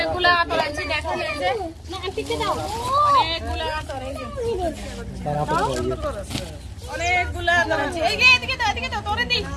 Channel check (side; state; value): both; identical; correlation 1.00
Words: আতর আনছি, দেখেন এই যে অনেকগুলা আতর, এই যে অনেকগুলা আতর আনছি। এই যে এদিকে দাও, এদিকে দাও, তোরে দি,